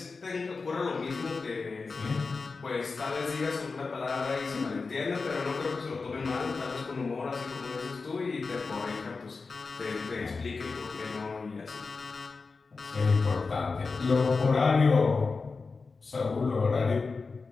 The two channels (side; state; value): right; quieter; 4.3 dB